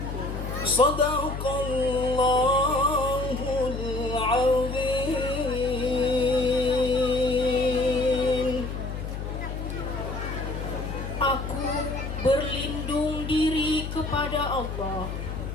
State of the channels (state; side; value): noise; left; hum, 6 dB below the sound